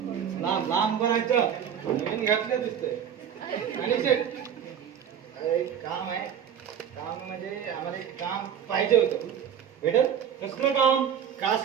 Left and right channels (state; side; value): quieter; left; 8.7 dB